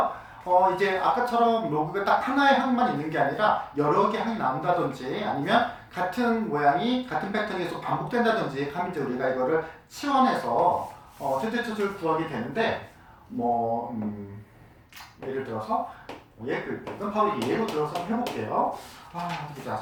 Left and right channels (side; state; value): both; identical; correlation 1.00